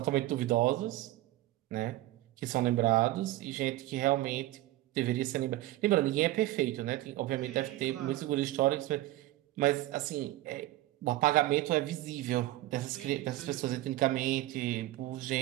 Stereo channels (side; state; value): left; quieter; 16.3 dB